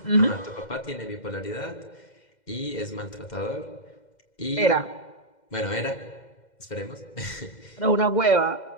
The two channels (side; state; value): right; late; 2.1 ms